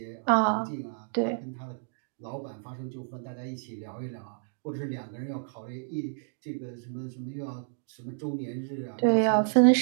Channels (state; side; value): silent; left; digital silence